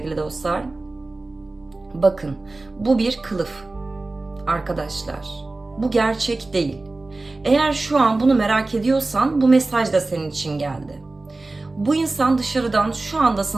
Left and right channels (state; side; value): quieter; left; 3.2 dB